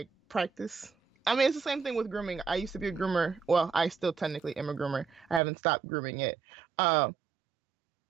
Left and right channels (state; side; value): drops out; left; at 5.4 s